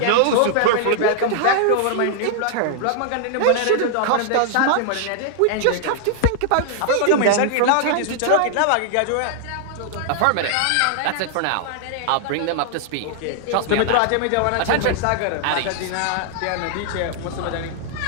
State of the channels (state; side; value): different; both; correlation 0.00